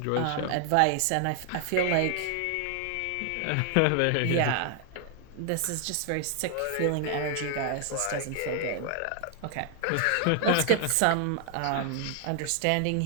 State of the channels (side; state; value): both; different; correlation 0.00